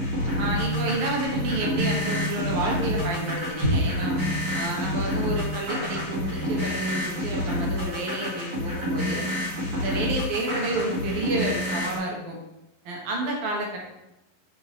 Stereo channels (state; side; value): late; left; 11 ms